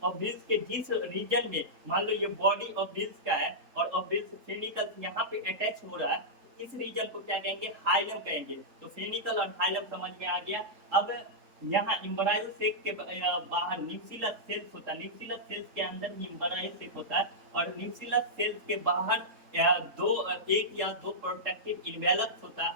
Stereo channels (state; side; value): late; left; 3.7 ms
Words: ओव्यूल्स के जिस रीजन में, मान लो ये बॉडी ओव्यूल्स का है और ओव्यूल्स फ्यूनिकल यहाँ पे अटैच हो रहा है, इस रीजन को क्या कहेंगे, हाइलम कहेंगे। तो फ्यूनिकल और हाइलम समझ में आ गया। अब यहाँ इम्ब्रायो सेक के बाहर न्यूक्लियस सेल्स होता है। न्यूक्लियस सेल्स के अंदर ही इम्ब्रायो सेक होता है, और न्यूक्लियस सेल्स के बाहर एक या दो प्रोटेक्टिव इन्वेलप्स होता है